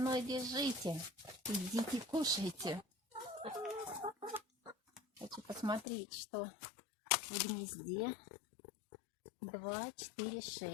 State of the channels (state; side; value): drops out; right; at 5.9 s